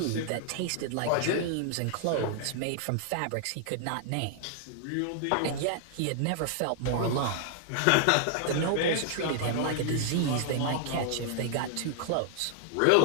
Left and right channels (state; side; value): different; both; correlation 0.00